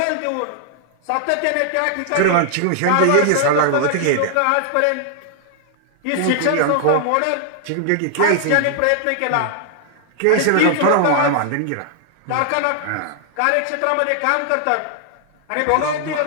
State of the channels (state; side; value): different; both; correlation 0.00